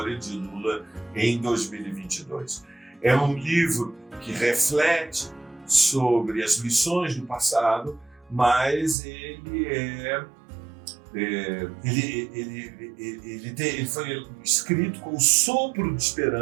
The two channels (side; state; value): left; drops out; at 9.0 s